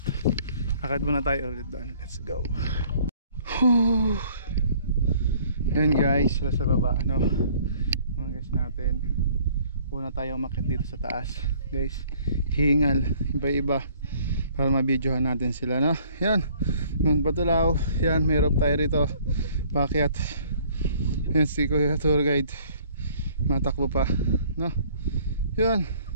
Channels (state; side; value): inverted; both; correlation -0.57